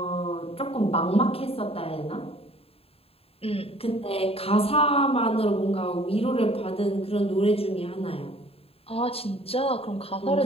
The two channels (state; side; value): late; right; 0.28 ms